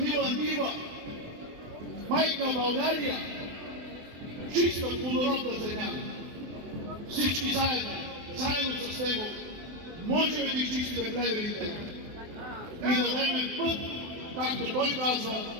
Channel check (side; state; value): left; late; 24 ms